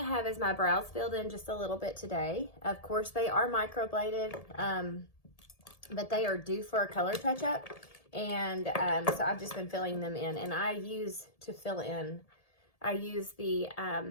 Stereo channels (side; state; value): right; late; 1.7 ms